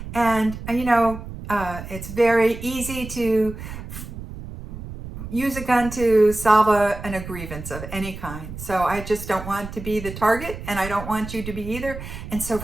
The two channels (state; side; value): noise; right; rumble, 10 dB below the sound